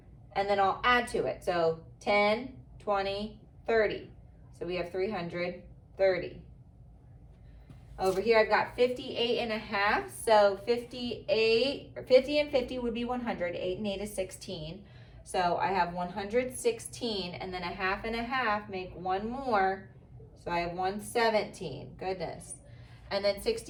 And then I'll add to it. So 10, 20, 30. So we have 330. Over here, I've got 58.5. So 50 and 50 would be 100. 8 and 8 is 16. So I have 116, and then a half and a half make one more. So I have 117. Goodness. And then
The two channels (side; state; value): both; identical; correlation 1.00